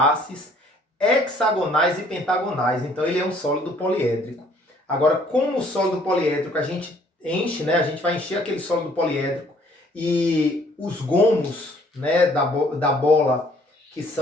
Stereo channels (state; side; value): normal; both; correlation 0.60